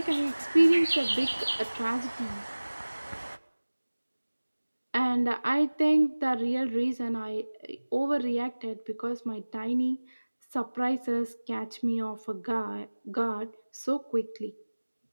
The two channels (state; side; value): inverted; both; correlation -1.00